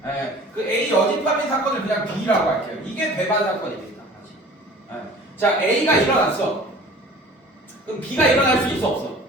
그 A 여집합인 사건을 그냥 B라고 할게요. 이게 배반 사건입니다. 자, A가 일어났어. 그럼 B가 일어날 수 있어 없어?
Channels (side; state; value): both; normal; correlation 0.45